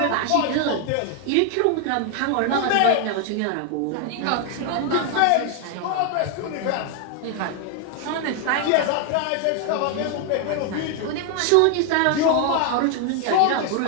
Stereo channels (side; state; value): both; different; correlation 0.00